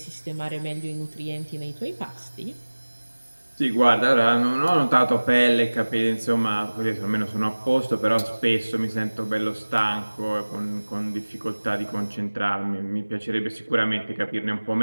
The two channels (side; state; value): both; inverted; correlation -1.00